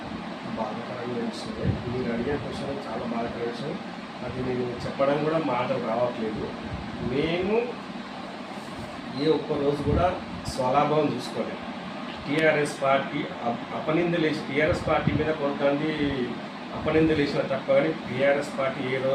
బాధాకరమైన విషయమే. మీరు అడిగే క్వశ్చన్ చాలా బాధాకరమైన విషయం. అది నేను చెప్పడం కూడా మాటలు రావట్లేదు. మేము ఏ ఒక్క రోజు కూడా స్వలాభం చూసుకోలేదు. టీఆర్ఎస్ పార్టీ అపనిందలేసి టీఆర్ఎస్ పార్టీ మీద కొంతమంది అపనిందలేసిన తప్ప కానీ టీఆర్ఎస్ పార్టీ ఏ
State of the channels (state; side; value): identical; both; correlation 1.00